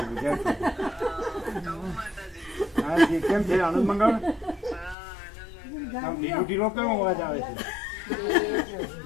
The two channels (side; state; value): right; drops out; at 5.0 s